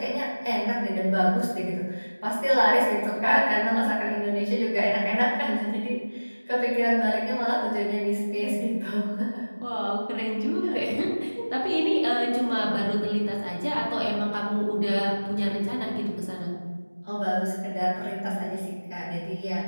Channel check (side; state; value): both; inverted; correlation -1.00